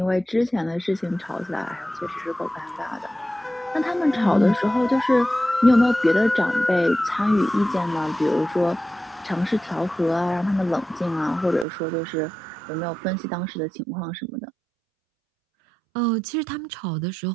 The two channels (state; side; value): drops out; left; at 11.7 s